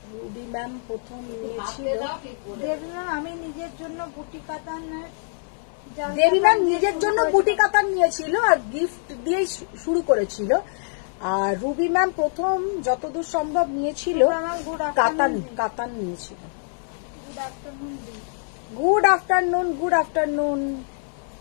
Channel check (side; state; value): right; silent; 62 dB below the other